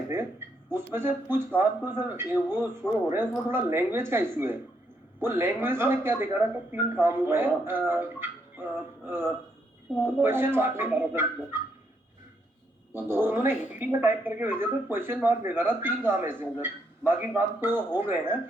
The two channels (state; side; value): normal; both; correlation 0.76